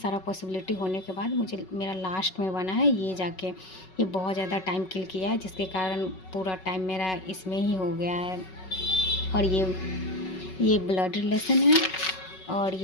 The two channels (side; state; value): right; late; 5.3 ms